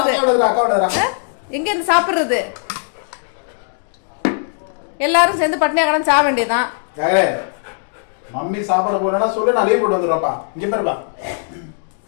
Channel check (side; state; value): right; silent; 67 dB below the other